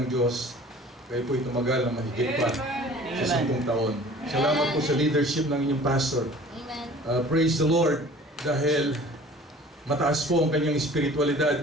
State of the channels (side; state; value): both; normal; correlation 0.47